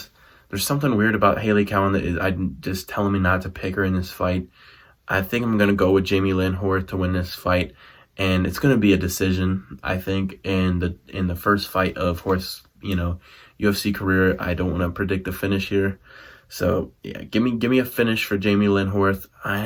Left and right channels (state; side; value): identical; both; correlation 1.00